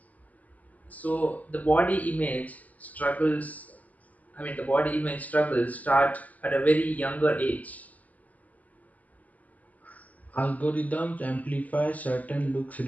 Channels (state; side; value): late; right; 0.077 ms